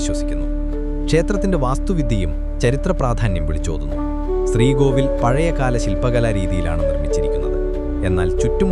ക്ഷേത്രത്തിന്റെ വാസ്തുവിദ്യയും ചരിത്ര പ്രാധാന്യം വിളിച്ചോതുന്നു. ശ്രീകോവിൽ പഴയകാല ശില്പകലാ രീതിയിലാണ് നിർമ്മിച്ചിരിക്കുന്നത്. എന്നാൽ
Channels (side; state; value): both; identical; correlation 1.00